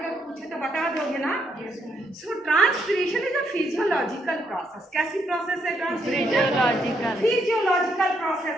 पूछे तो बता दोगे ना? So transpiration is a physiological process. कैसी प्रोसेस है ट्रांसपिरेशन? फिजियोलॉजिकल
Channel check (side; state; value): both; normal; correlation 0.76